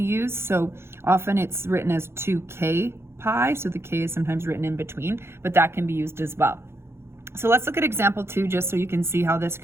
used, so often it's written as 2k pi, so the k is sometimes written in between, but that can be used as well. So let's look at example 2 just so you can see how this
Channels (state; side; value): late; left; 0.12 ms